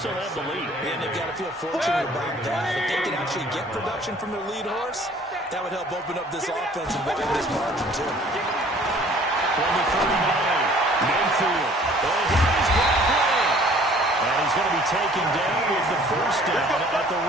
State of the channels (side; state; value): both; normal; correlation 0.54